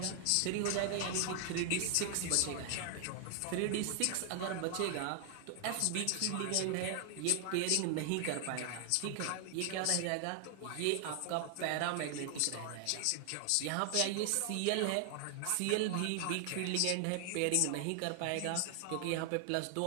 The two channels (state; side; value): different; both; correlation 0.00